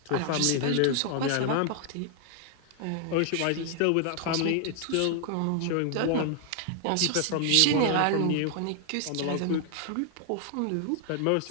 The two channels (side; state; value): both; different; correlation 0.00